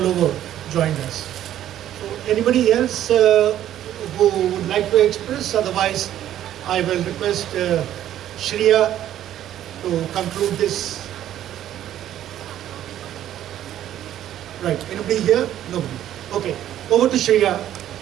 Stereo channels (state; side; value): quieter; left; 11.8 dB